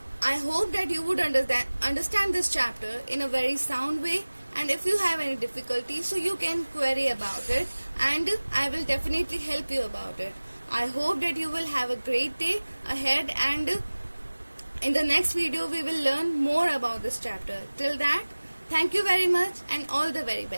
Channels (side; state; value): both; inverted; correlation -1.00